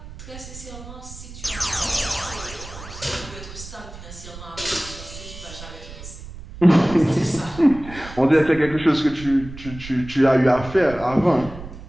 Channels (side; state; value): right; noise; rumble, 14 dB below the sound